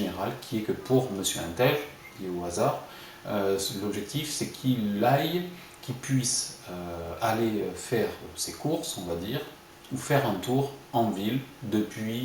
qui est que pour Monsieur Intel, qui est au hasard, l'objectif c'est qu'il puisse aller faire ses courses, on va dire, ou faire un tour en ville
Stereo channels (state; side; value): identical; both; correlation 1.00